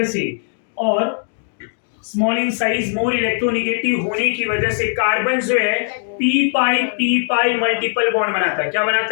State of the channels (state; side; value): silent; right; digital silence